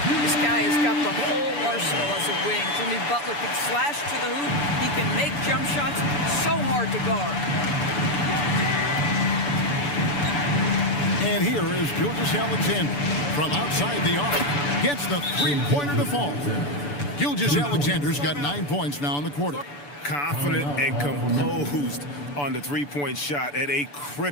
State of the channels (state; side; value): late; right; 6.9 ms